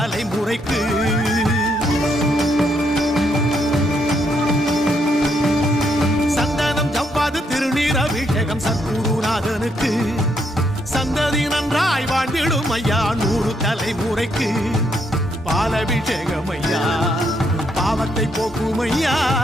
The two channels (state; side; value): normal; both; correlation 0.75